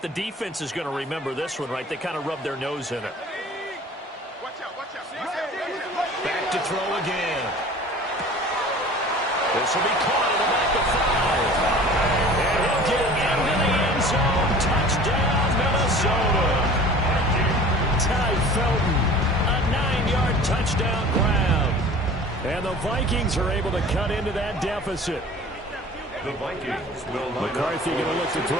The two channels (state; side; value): normal; both; correlation 0.43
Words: the defense is going to remember this one, right? They kind of rubbed their nose in it. Back to throw again. This will be caught at about the 5. And he'll get into the end zone. Touchdown, Minnesota. Ty Felton, a 9-yard touchdown grab. And the Vikings are able to cut into that deficit. The Vikings will McCarthy going to look to